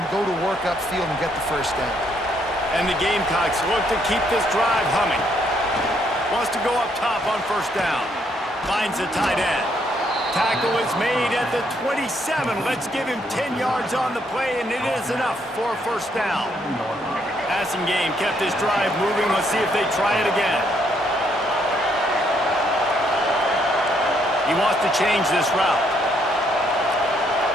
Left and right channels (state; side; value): normal; both; correlation 0.71